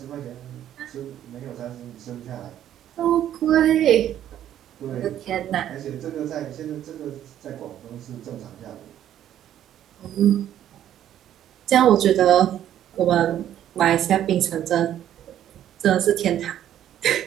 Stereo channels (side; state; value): left; quieter; 11.2 dB